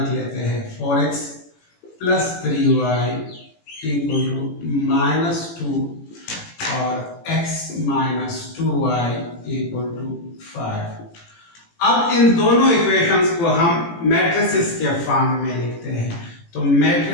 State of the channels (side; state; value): right; late; 18 ms